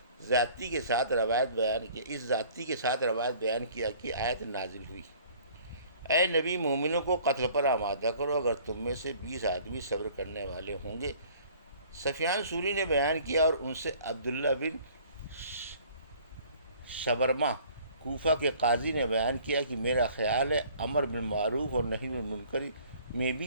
ذاتی کے ساتھ روایت بیان کی، اس ذاتی کے ساتھ روایت بیان کیا کہ آیت نازل ہوئی، اے نبی مومنوں کو قتل پر آمادہ کرو اگر تم میں سے 20 آدمی صبر کرنے والے ہوں گے۔ سفیان ثوری نے بیان کیا اور ان سے عبداللہ بن شبرمہ کوفہ کے قاضی نے بیان کیا کہ میرا خیال ہے امر بالمعروف اور نہی عن المنکر میں بھی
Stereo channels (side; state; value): both; inverted; correlation -0.53